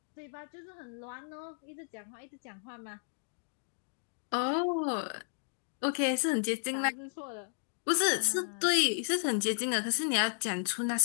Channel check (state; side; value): silent; right; digital silence